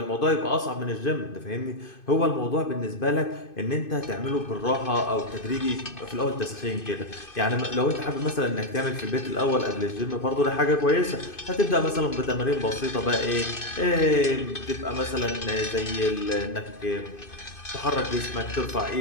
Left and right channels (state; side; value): late; right; 2.5 ms